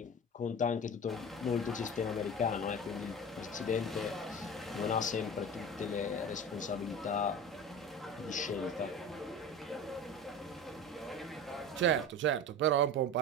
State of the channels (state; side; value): normal; both; correlation 0.32